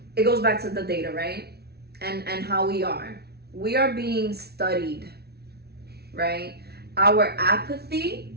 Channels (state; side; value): late; left; 0.47 ms